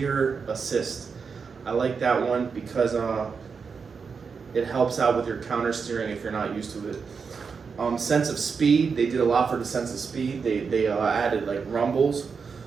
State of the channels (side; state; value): left; quieter; 5.6 dB